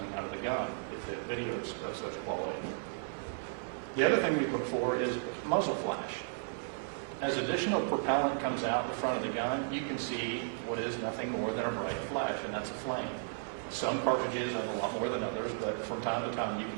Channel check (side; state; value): left; silent; 55 dB below the other